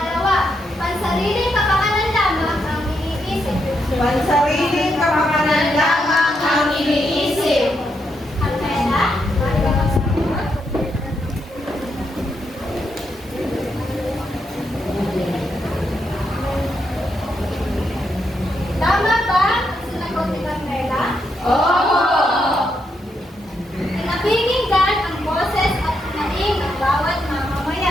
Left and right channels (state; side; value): normal; both; correlation 0.80